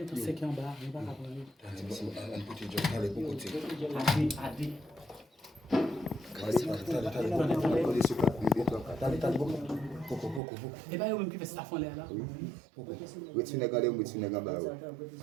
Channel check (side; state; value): left; drops out; at 10.4 s